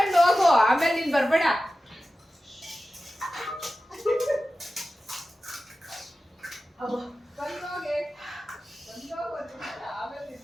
ಹೋಗು ಆಮೇಲೆ ನೀನ್ ಬರ್ಬೇಡ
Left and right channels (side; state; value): both; normal; correlation 0.94